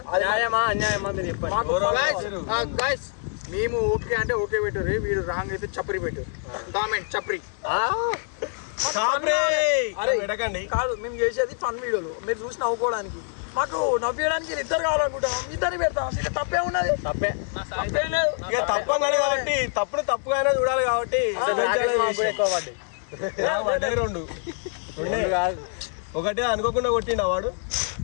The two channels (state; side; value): silent; right; 62 dB below the other